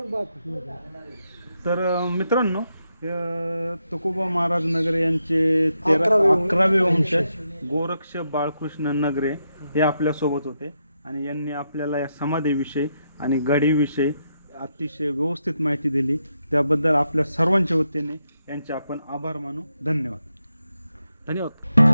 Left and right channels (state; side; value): inverted; both; correlation -0.82